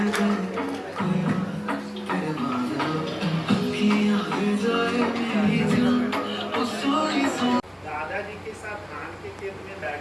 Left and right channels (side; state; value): both; identical; correlation 1.00